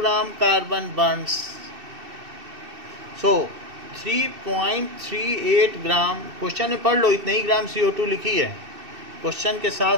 carbon burns. So 3.38 gram, question में पढ़ लो, इतने ही ग्राम CO2 लिखी है। क्वेश्चन के साथ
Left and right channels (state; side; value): late; left; 2.7 ms